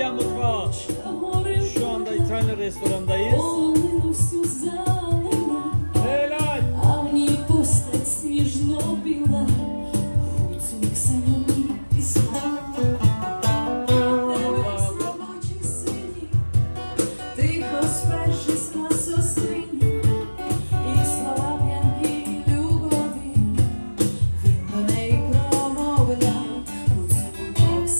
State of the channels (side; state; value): both; inverted; correlation -1.00